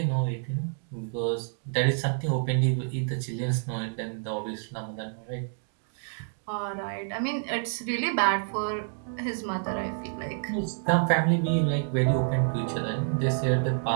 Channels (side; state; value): left; silent; digital silence